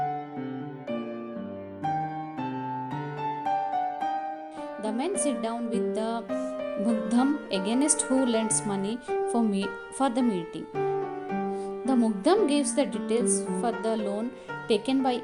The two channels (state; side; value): identical; both; correlation 1.00